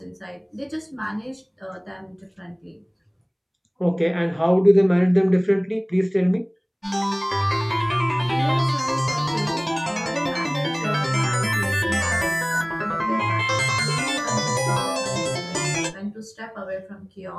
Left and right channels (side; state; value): both; identical; correlation 1.00